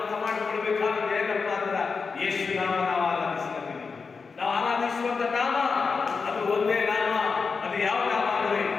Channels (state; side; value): quieter; right; 5.0 dB